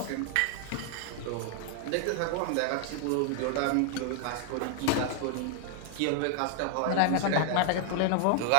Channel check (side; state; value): both; different; correlation 0.00